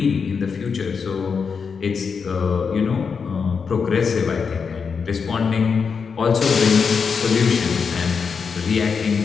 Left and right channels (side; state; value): right; quieter; 5.8 dB